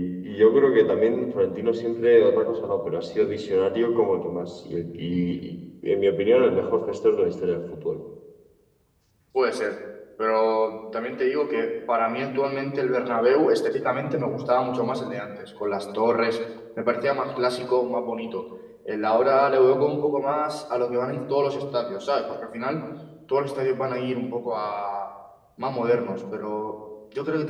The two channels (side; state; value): both; identical; correlation 1.00